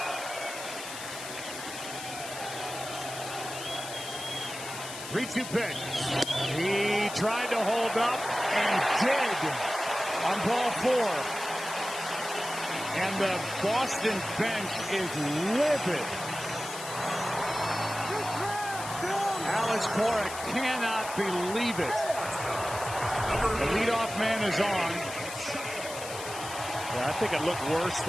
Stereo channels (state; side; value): noise; left; hiss, 9 dB below the sound